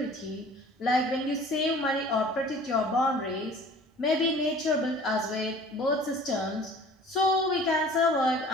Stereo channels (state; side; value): normal; both; correlation 0.47